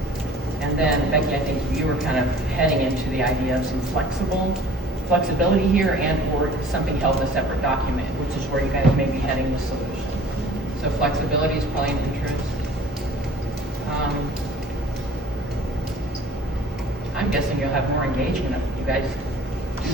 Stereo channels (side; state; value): both; normal; correlation 0.49